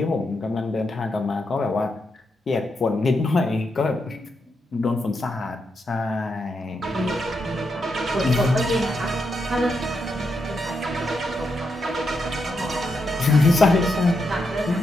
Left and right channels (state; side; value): normal; both; correlation 0.83